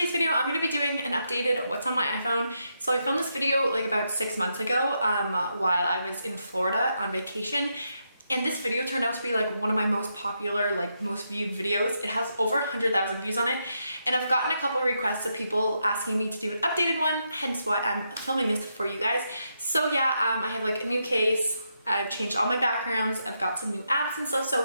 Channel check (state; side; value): inverted; both; correlation -0.82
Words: video, I'm gonna be doing an updated what's on my iPhone. So I filmed this video like about 6 months ago while I was in Florida on vacation. And this video turned out to be like one of my most popular, like most viewed videos. It has over 100,000 views on it. And I've gotten a couple of requests of people asking me to do an updated one, hence why I'm filming this for you guys. So yeah, I have like a new case. I've changed all my backgrounds. I've got some new apps and stuff.